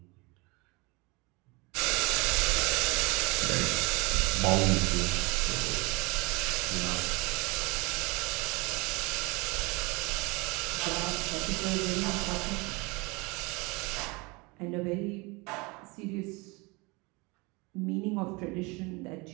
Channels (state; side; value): quieter; left; 26.6 dB